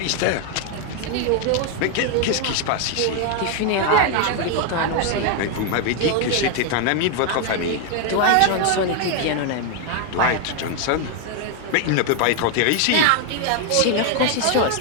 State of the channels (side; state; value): both; different; correlation 0.01